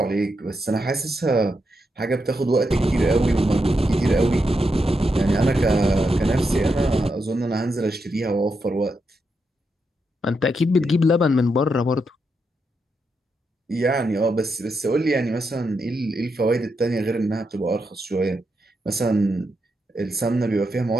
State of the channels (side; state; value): both; normal; correlation 0.83